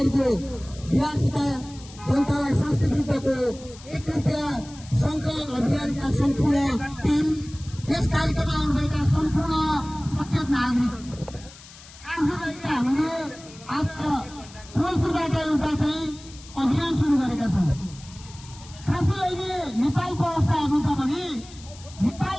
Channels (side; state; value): left; noise; hiss, 20 dB below the sound